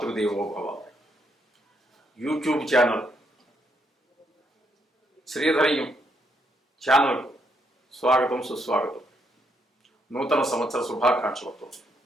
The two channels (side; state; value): both; normal; correlation 0.75